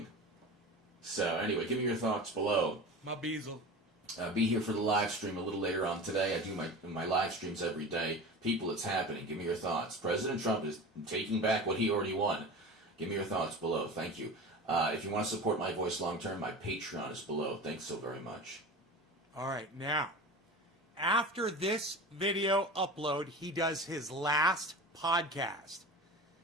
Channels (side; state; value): both; normal; correlation 0.33